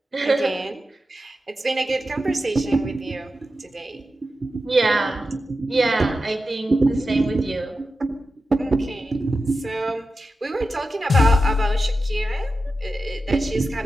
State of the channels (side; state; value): both; normal; correlation 0.91